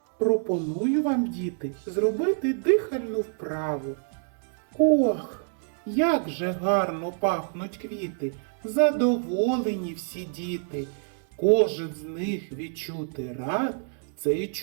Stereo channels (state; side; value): silent; left; 60 dB below the other